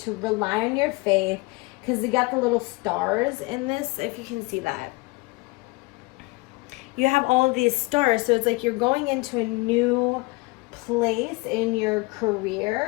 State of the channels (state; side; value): quieter; right; 25.1 dB